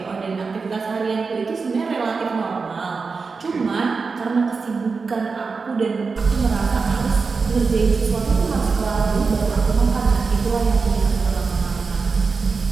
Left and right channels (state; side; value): quieter; left; 4.7 dB